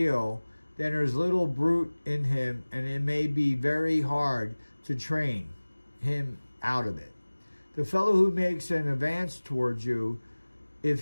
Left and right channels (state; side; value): inverted; both; correlation -1.00